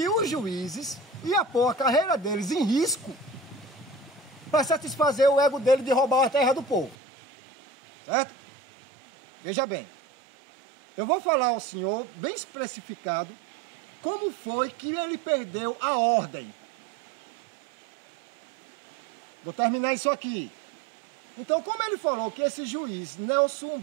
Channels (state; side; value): drops out; left; at 7.0 s